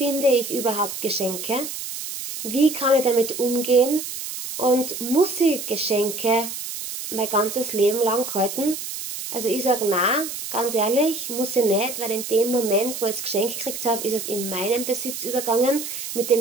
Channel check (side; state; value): right; noise; hiss, 7 dB below the sound